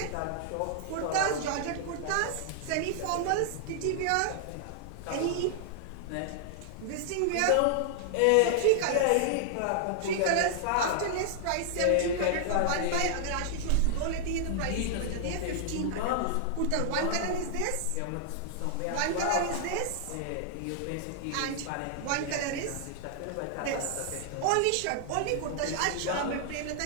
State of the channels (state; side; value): different; both; correlation -0.01